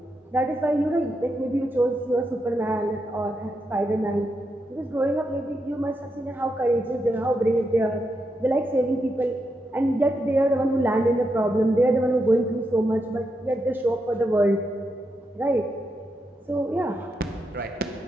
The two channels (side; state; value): both; normal; correlation 0.84